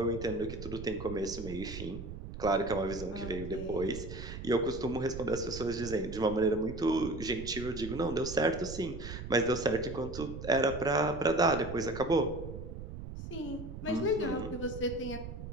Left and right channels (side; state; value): right; noise; rumble, 9 dB below the sound